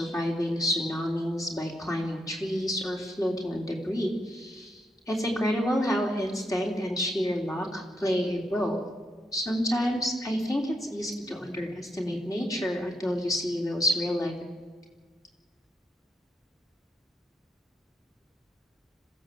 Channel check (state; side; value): normal; both; correlation 0.81